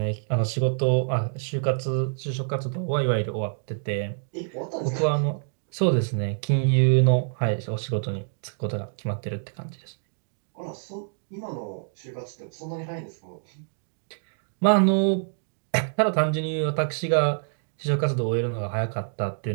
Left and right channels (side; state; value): left; silent; digital silence